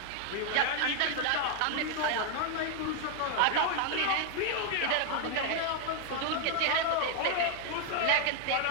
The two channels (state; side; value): different; both; correlation 0.00